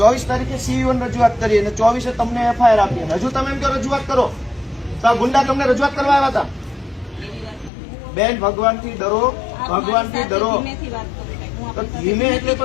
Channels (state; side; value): drops out; right; at 7.7 s